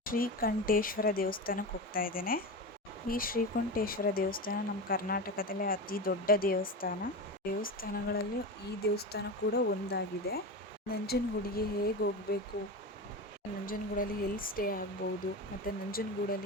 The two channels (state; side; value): normal; both; correlation 0.23